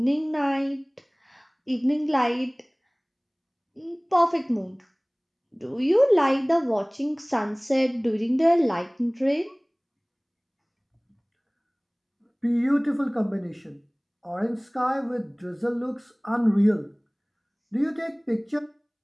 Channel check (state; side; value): identical; both; correlation 1.00